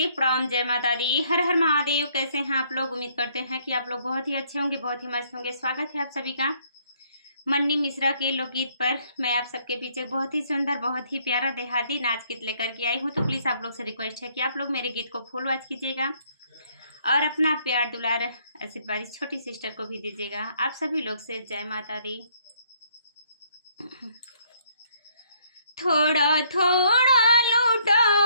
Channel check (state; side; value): inverted; both; correlation -0.66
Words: प्रणाम, जय माता दी, हर हर महादेव। कैसे हैं आप लोग? उम्मीद करते हैं कि आप लोग बहुत ही अच्छे होंगे, बहुत ही मस्त होंगे। स्वागत है आप सभी का मन्नी मिश्रा के लोकगीत पर। मैं आप सबके पीछे बहुत ही सुंदर, बहुत ही प्यारा देहाती नाच गीत लेकर के आई हूँ। तो प्लीज़ आप लोग से रिक्वेस्ट है कि आप लोग मेरे गीत को फुल वॉच कीजिएगा और अपना प्यार दुलार आशीर्वाद इस छोटी सिस्टर को भी दीजिएगा। आप सभी लोग से जय माता दी। थोड़ा थोड़ा